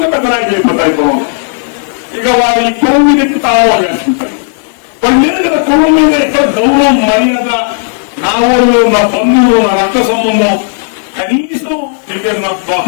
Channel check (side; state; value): right; silent; digital silence